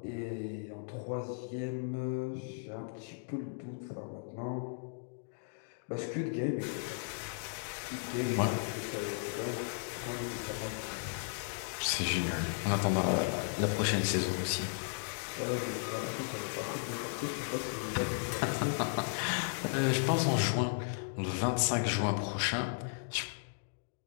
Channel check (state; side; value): silent; right; digital silence